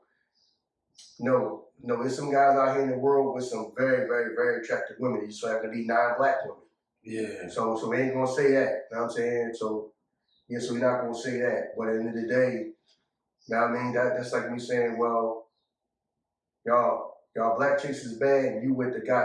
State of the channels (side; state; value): both; identical; correlation 1.00